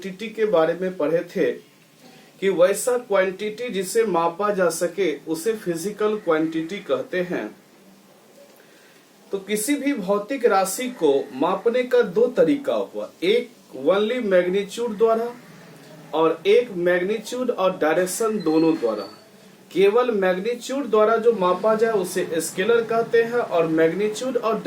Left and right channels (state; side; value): identical; both; correlation 1.00